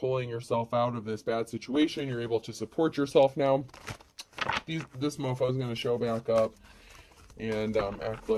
yourself out of this bad situation, you're able to support yourself now, this mofo is going to show back up and act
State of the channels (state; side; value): identical; both; correlation 1.00